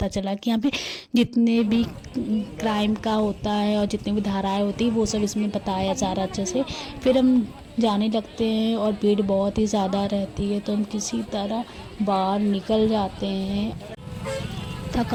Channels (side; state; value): both; identical; correlation 1.00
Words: चला कि यहाँ पे जितने भी क्राइम का होता है और जितनी भी धाराएँ होती है वो सब इसमें बताया जा रहा अच्छे से। फिर हम जाने लगते हैं और भीड़ बहुत ही ज़्यादा रहती है, तो हम किसी तरह बाहर निकल जाते हैं।